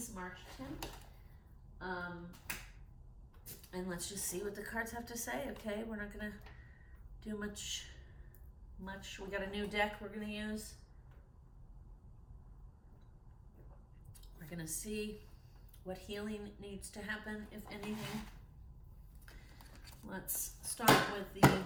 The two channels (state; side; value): identical; both; correlation 1.00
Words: March 10th. And let's just see what the cards have to say, okay? We're not going to do much. We got a new deck we're going to use. We're going to see what healing needs to happen, if anything. Let's start with the